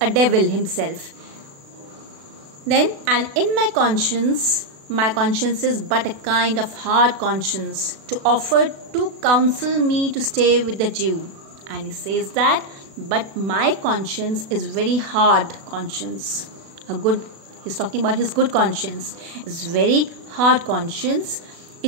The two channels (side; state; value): left; late; 36 ms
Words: devil himself. Then, and in my conscience is but a kind of hard conscience to offer to counsel me to stay with the Jew. And he says that, but my conscience is very hard conscience. He's talking about his good conscience. It's very hard conscience.